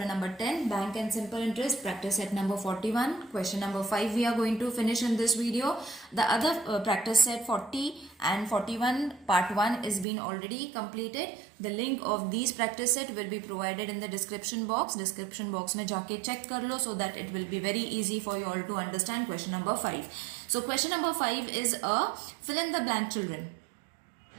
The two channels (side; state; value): left; drops out; at 10.1 s